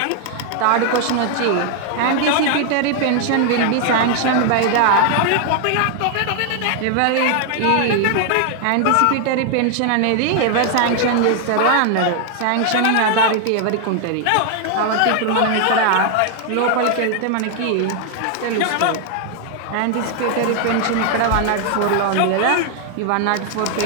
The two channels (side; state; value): both; different; correlation 0.00